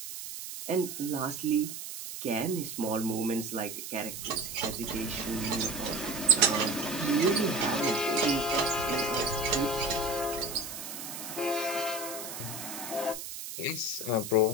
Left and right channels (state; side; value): noise; right; hiss, 8 dB below the sound